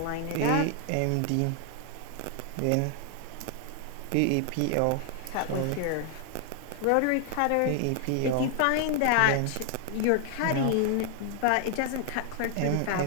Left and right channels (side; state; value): both; different; correlation 0.00